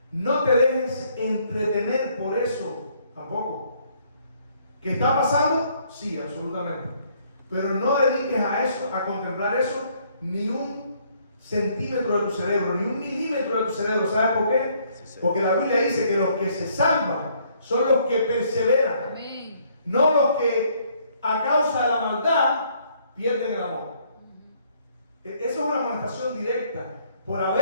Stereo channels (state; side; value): inverted; both; correlation -0.66